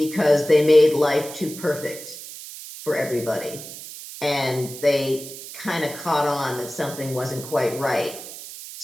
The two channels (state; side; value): noise; right; hiss, 12 dB below the sound